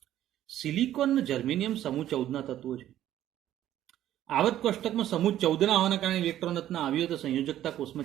સિલિકોન અને જર્મેનિયમ સમૂહ 14 ના તત્વો છે. આવર્ત કોષ્ટકમાં સમૂહ 14 ના હોવાના કારણે ઇલેક્ટ્રોન રચના આવી હોય તો સંયોજકતા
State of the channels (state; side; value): quieter; left; 12.4 dB